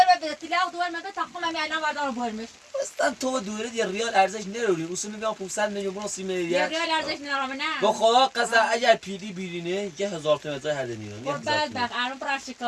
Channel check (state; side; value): identical; both; correlation 1.00